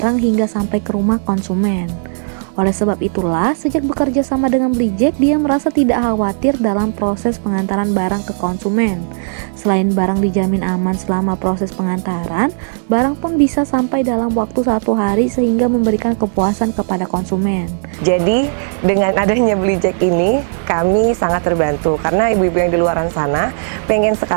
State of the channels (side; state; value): left; silent; digital silence